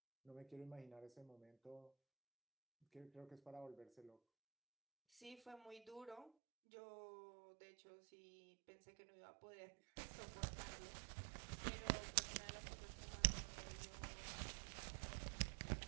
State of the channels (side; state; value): left; drops out; at 6.3 s